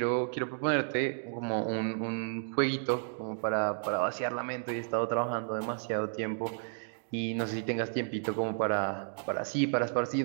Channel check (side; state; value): left; silent; digital silence